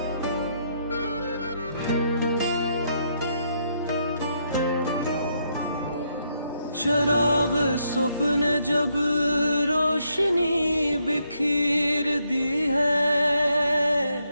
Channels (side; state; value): both; inverted; correlation -0.76